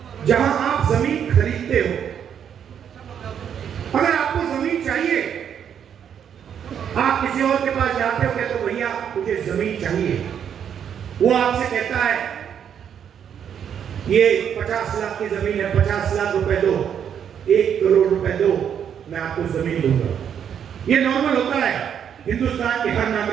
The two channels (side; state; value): left; quieter; 8.5 dB